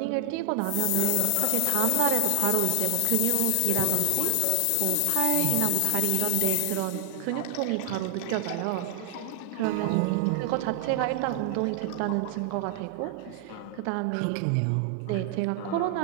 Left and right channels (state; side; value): different; both; correlation 0.00